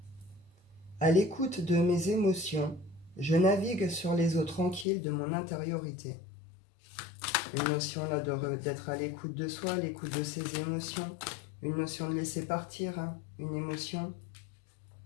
À l'écoute de mes émotions, je navigue sur les eaux tranquilles de mon intériorité. Une notion là d'être à l'écoute de soi, à l'écoute de ses émotions. Une notion de laisser partir, une émotion.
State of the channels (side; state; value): right; drops out; at 4.9 s